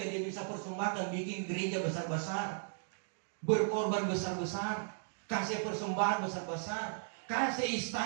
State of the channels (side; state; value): left; silent; digital silence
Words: bisa persembahkan, bikin gereja besar-besar, berkorban besar-besar, kasih persembahan besar-besar, kasih